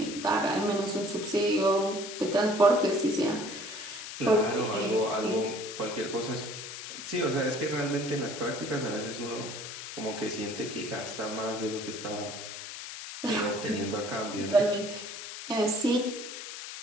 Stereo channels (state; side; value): noise; left; hiss, 9 dB below the sound